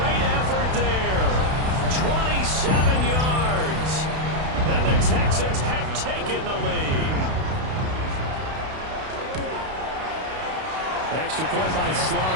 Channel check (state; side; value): late; left; 32 ms